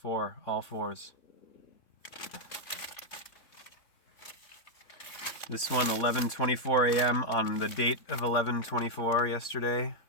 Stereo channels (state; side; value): late; right; 3.6 ms